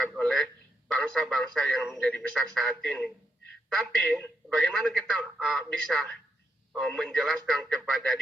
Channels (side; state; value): both; normal; correlation 0.80